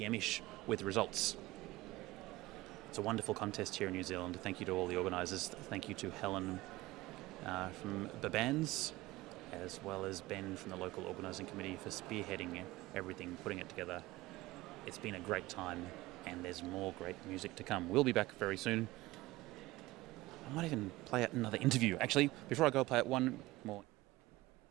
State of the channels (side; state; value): left; quieter; 18.9 dB